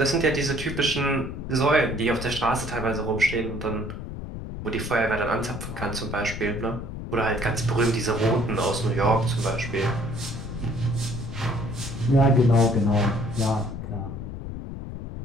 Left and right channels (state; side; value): noise; left; rumble, 8 dB below the sound